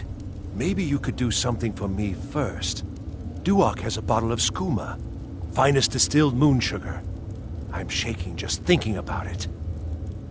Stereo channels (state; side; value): identical; both; correlation 1.00